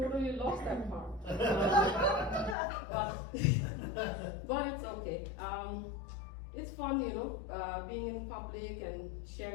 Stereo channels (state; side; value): drops out; right; at 2.6 s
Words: lost that part. But it's okay. It's fun, being in public and